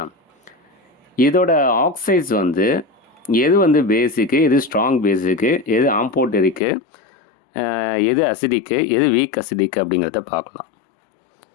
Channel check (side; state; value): right; drops out; at 6.6 s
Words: இதோட ஆக்சைட்ஸ் எது பேசிக்கு, எது ஸ்ட்ராங் பேசிக்கு, எது ஆம்போட்டரிக்கு, எது அசிடிக்கு, எது வீக் அசிடிக்கு அப்படிங்கிறத பார்க்கலாம்.